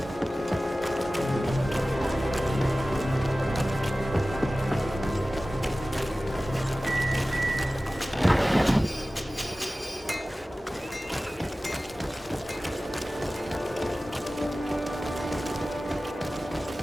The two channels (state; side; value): normal; both; correlation 0.96